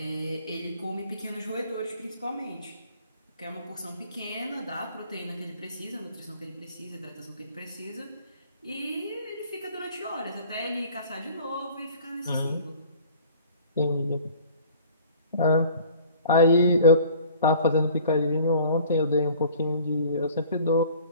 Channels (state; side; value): inverted; both; correlation -0.49